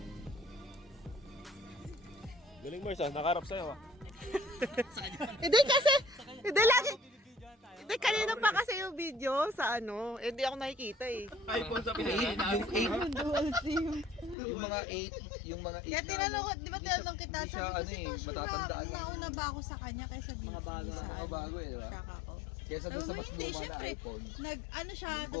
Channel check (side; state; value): right; drops out; at 14.4 s